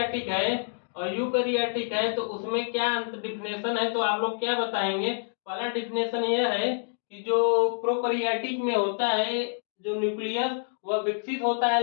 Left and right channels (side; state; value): right; silent; digital silence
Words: है और यूकैरियोटिक है तो उसमें क्या डिफिनेशन है, तो आप लोग क्या बताएंगे? पहला डिफिनेशन यह है कि जो प्रोकैरियोटिक में होता है जो न्यूक्लियस वह विकसित होता है,